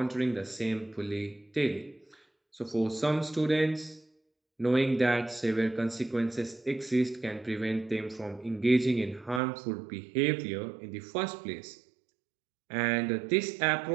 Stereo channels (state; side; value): drops out; left; at 9.4 s